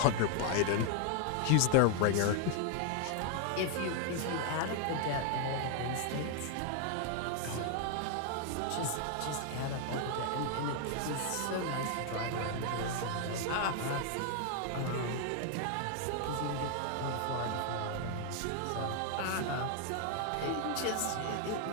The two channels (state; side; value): different; both; correlation 0.00